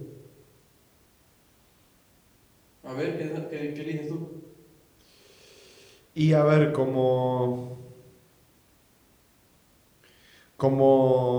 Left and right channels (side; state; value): both; identical; correlation 1.00